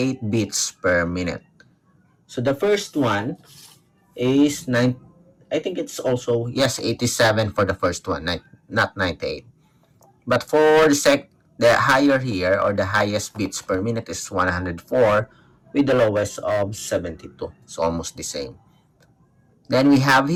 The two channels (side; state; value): both; identical; correlation 1.00